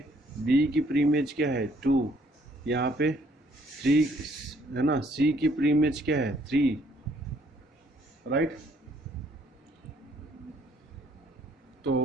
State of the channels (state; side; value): normal; both; correlation 0.65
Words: बी की प्री इमेज क्या है 2, यहाँ पे 3 है ना, सी की प्री इमेज क्या है 3, राइट।